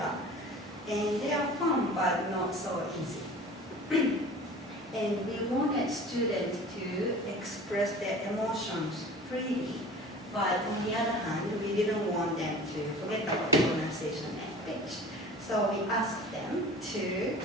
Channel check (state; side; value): normal; both; correlation 0.41